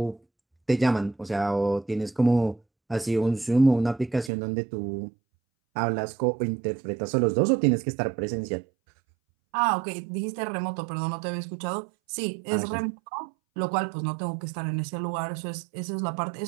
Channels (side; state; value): left; drops out; at 4.3 s